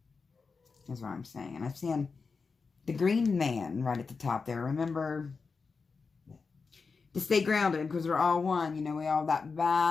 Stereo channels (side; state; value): right; quieter; 4.8 dB